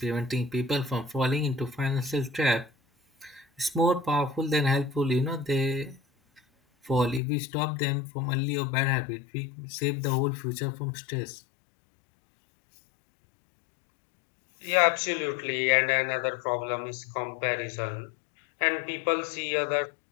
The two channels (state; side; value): drops out; right; at 7.2 s